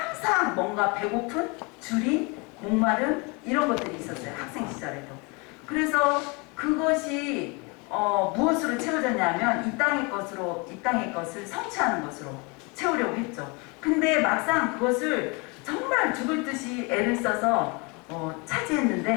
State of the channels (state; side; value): quieter; right; 29.5 dB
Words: 뭔가 배고픈, 줄인, 목마름 이런 것들이 있었어요. 학생 시절에도. 그래서 그것이 무엇으로 채워졌냐면 이 땅의 것을 성취하는 것으로 채우려고 했죠. 근데 막상 그것을 정말 죽을 듯이 애를 써서